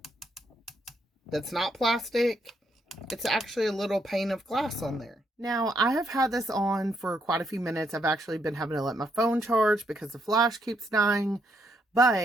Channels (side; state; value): both; normal; correlation 0.75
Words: That's not plastic. It's actually a little pane of glass on there. Now, I have had this on for quite a few minutes. I've actually been having to let my phone charge because the flash keeps dying.